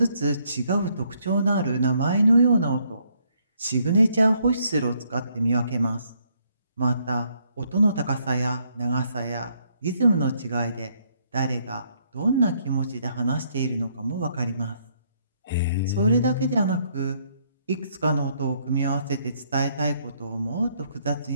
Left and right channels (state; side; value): inverted; both; correlation -0.70